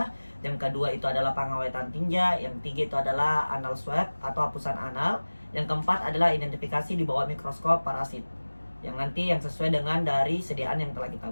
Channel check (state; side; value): inverted; both; correlation -1.00